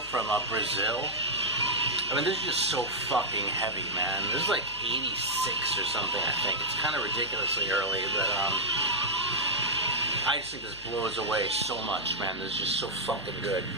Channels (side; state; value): left; noise; hum, 21 dB below the sound